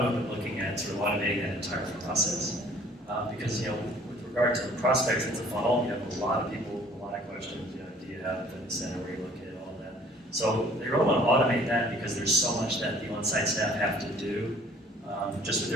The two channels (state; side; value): normal; both; correlation 0.55